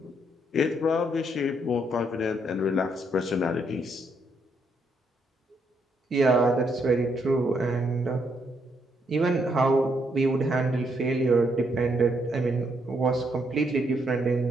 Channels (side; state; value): both; normal; correlation 0.75